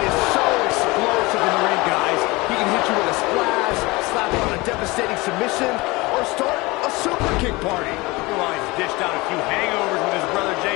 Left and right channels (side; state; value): right; quieter; 23.0 dB